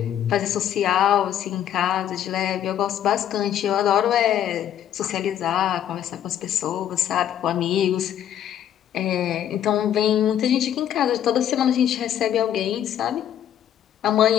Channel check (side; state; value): right; quieter; 10.4 dB